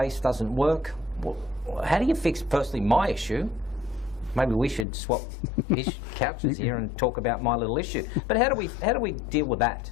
doesn't work. Well, how do you fix, firstly, my issue? Maybe we should swap couches here and talk about my little issue. But how do we deal with that?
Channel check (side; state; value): right; drops out; at 4.9 s